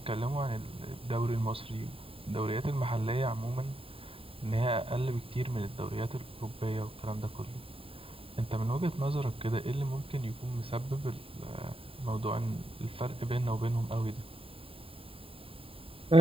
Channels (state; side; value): late; left; 0.27 ms